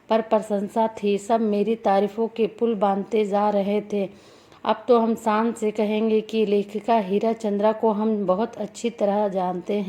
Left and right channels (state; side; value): identical; both; correlation 1.00